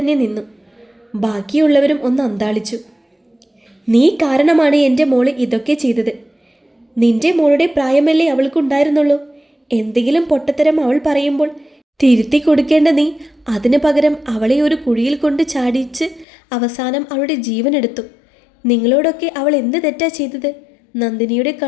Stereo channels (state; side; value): drops out; right; at 16.2 s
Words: നിന്നു. ബാക്കിയുള്ളവരും ഒന്ന് അന്താളിച്ചു. നീ കാരണമാണ് എൻ്റെ മോള് ഇതൊക്കെ ചെയ്തത്. നിന്റെ മോളുടെ പ്രായമല്ലേ അവൾക്കുണ്ടായിരുന്നുള്ളൂ. എന്തെങ്കിലും പൊട്ടത്തരം അവൾ പറയുമ്പോൾ തിരുത്തി കൊടുക്കേണ്ട നീ അതിന് പകരം അവളെ ഒരു കുഴിയിൽ കൊണ്ട് ചാടിച്ച് അവസാനം അവളുടെ ജീവനെടുത്തു. നിങ്ങളോടൊക്കെ അവൾ എന്ത് തെറ്റാ ചെയ്തത്? നന്ദിനിയുടെ